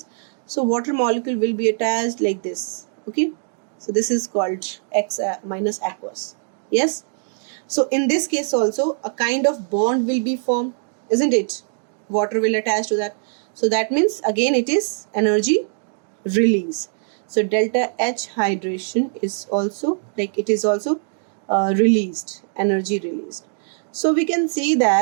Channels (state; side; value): silent; left; digital silence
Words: so water molecule will be attached like this. Okay, so this is called X minus aqueous. Yes. So in this case also a kind of bond will be formed, isn't it? Water will attach to that. So that means again it is energy release. So delta H hydration is also like it is also released, energy released. So we can see